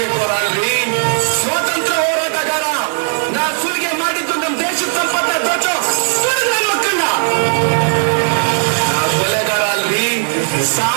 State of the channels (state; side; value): silent; left; 66 dB below the other